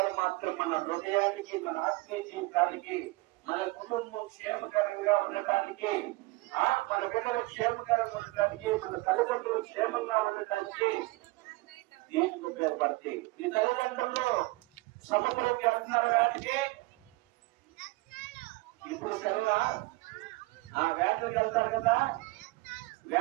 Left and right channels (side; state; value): left; quieter; 22.5 dB